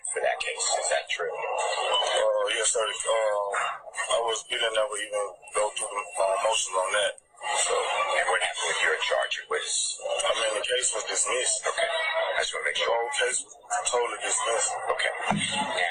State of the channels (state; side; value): identical; both; correlation 1.00